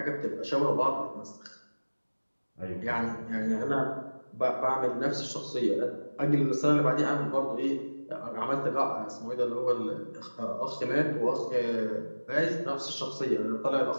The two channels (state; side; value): inverted; both; correlation -1.00